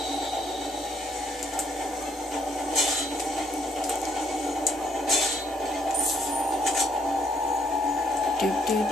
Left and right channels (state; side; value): normal; both; correlation 0.68